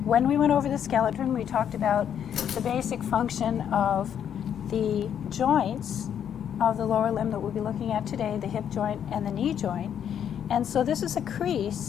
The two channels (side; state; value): right; quieter; 9.0 dB